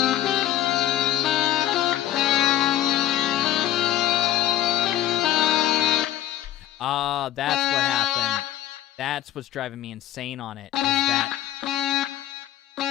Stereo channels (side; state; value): right; quieter; 12.6 dB